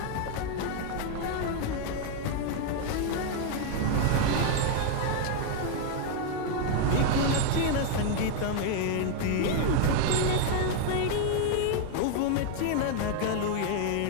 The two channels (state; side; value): different; both; correlation 0.00